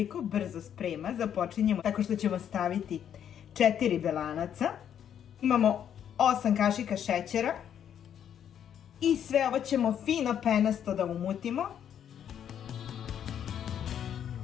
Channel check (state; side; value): quieter; right; 9.3 dB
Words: brzo sprema. Započinjemo tako što ćemo staviti 4 belanaca. Imamo 8 kašika šećera i sve ovo ćemo fino penasto da umutimo.